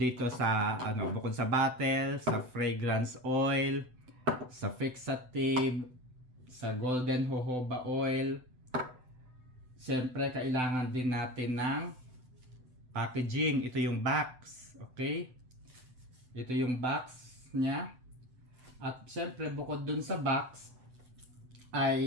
sa bukod sa bottle, sa fragrance oil, sa fixative, sa golden jojoba oil, siyempre kailangan din natin ng packaging. Ito yung box, okay? Ito yung box niya. At siyempre bukod dun sa box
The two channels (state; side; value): late; left; 7.9 ms